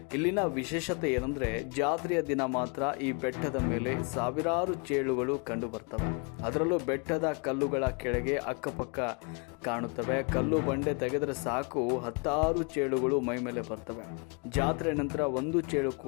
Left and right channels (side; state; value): right; quieter; 34.7 dB